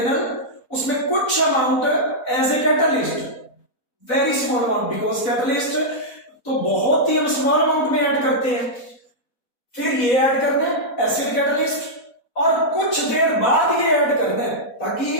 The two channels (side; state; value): right; late; 4.1 ms